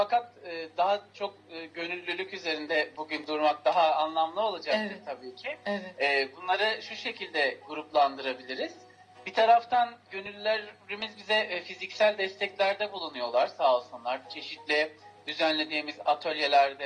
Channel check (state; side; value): identical; both; correlation 1.00